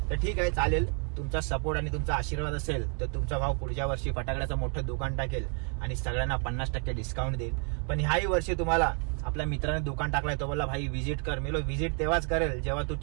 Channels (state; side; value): quieter; left; 39.9 dB